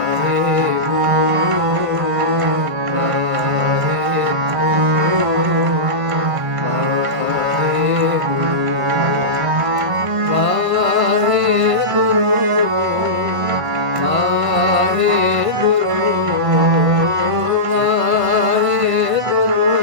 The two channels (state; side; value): late; left; 1.5 ms